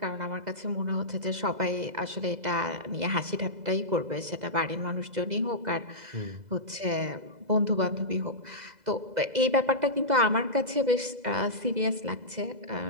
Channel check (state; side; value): late; left; 2.0 ms